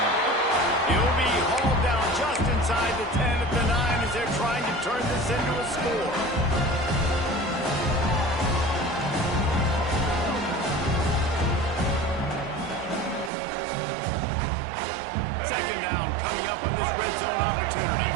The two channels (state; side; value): drops out; left; at 13.3 s